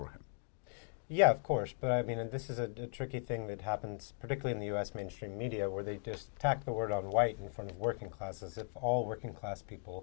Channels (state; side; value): silent; right; 53 dB below the other